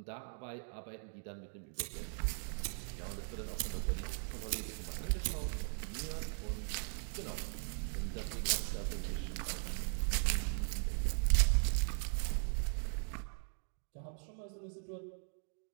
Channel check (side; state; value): left; silent; 52 dB below the other